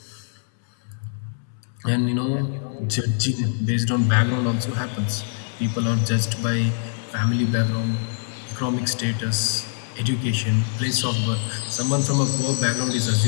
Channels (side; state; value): right; silent; 63 dB below the other